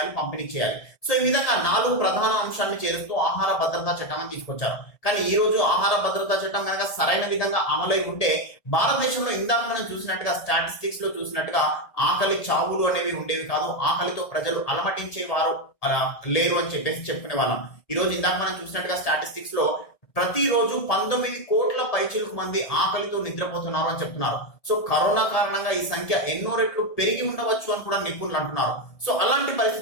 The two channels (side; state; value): right; late; 1.8 ms